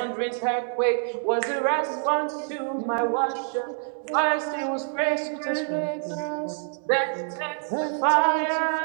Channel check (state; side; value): silent; left; digital silence